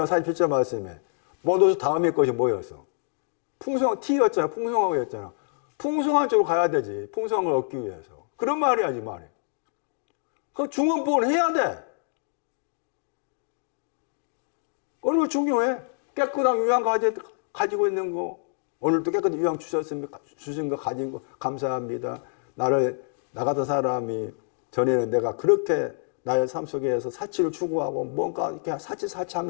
47절 말씀에 모두 다음의 것이 뭐였어? 풍성한 T였잖아. 풍성하고였잖아. 풍성한 쪽으로 가야 되지. 풍성한 걸 얻기 위해서. 그런 말이야, 이 말이. 그 중언부언 해야 돼. 얼마나 중요해. 깨끗한 유양 가지고 있는 거. 오늘도 깨끗한 유양 주신 거 가진 거 감사합니다. 나 같은 사람이 전에는 내가 그렇게 나의 삶 속에서 사치를 추구하고 뭔가 이렇게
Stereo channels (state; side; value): silent; right; digital silence